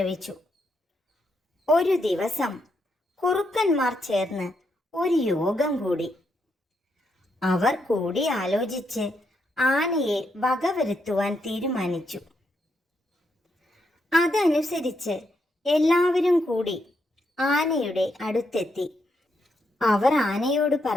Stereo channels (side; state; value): both; normal; correlation 0.79